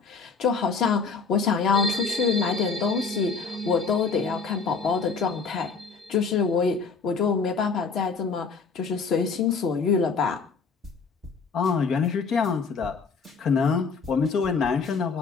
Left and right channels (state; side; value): quieter; right; 5.0 dB